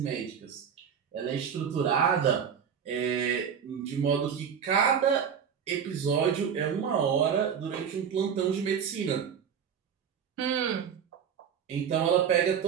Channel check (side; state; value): left; quieter; 7.6 dB